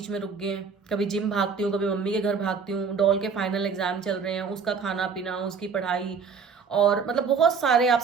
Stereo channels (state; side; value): quieter; left; 5.7 dB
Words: में रुक गए हैं। कभी जिम भागती हूँ, कभी मम्मी के घर भागती हूँ, डॉल के फाइनल एग्जाम चल रहे हैं, उसका खाना पीना, उसकी पढ़ाई, और मतलब बहुत सारे, आप